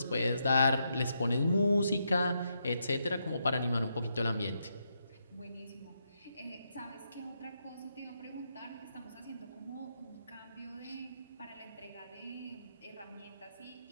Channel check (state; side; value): inverted; both; correlation -0.81